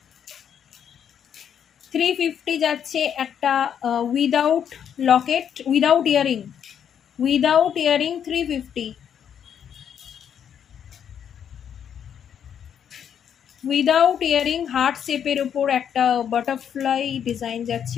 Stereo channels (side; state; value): right; quieter; 8.6 dB